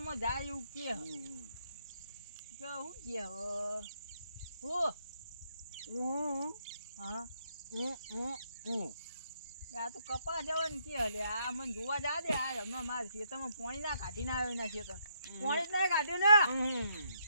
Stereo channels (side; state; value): both; inverted; correlation -0.73